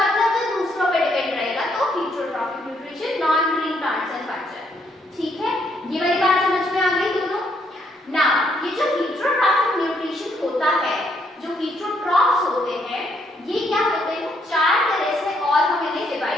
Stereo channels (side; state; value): both; normal; correlation 0.72